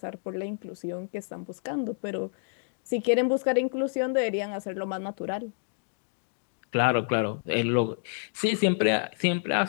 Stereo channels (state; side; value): silent; right; digital silence